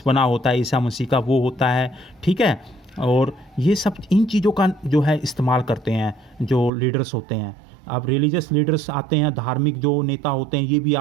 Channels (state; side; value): drops out; left; at 6.7 s